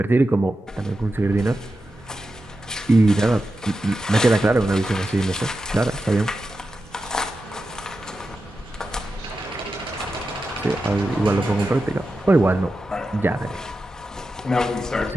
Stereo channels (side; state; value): both; normal; correlation 0.90